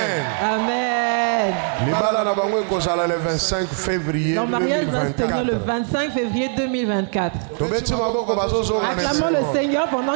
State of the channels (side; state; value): left; silent; 57 dB below the other